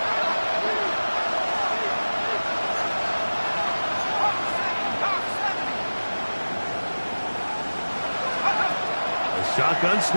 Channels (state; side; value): inverted; both; correlation -1.00